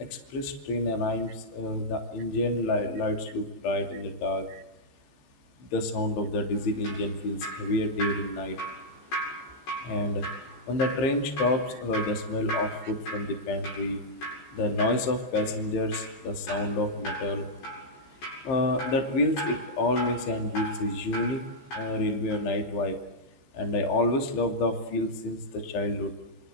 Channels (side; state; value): right; late; 15 ms